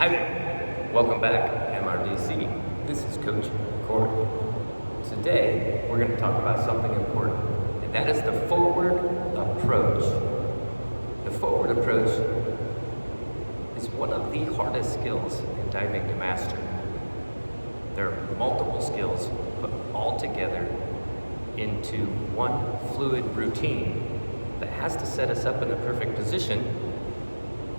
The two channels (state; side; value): inverted; both; correlation -1.00